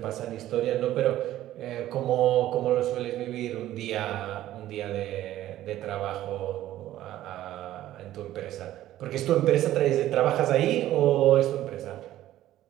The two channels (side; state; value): left; quieter; 13.8 dB